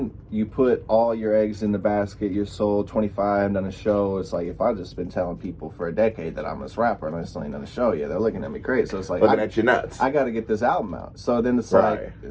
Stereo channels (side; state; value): both; identical; correlation 1.00